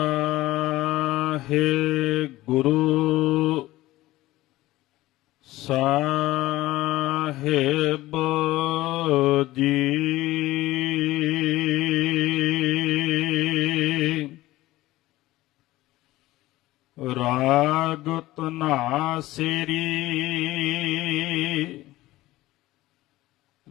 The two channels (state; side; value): quieter; right; 17.2 dB